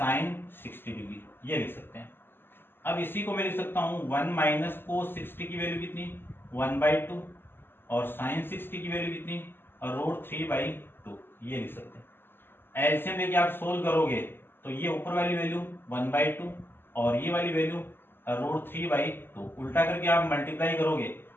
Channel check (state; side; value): late; right; 0.10 ms